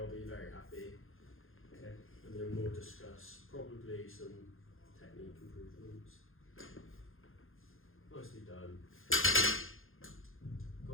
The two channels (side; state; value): right; late; 0.60 ms